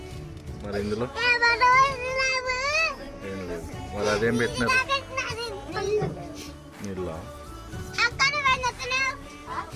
మరి ఇందులో ఏం లేదు. మరి అదేం పెట్టినారు? నీళ్ళ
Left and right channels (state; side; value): identical; both; correlation 1.00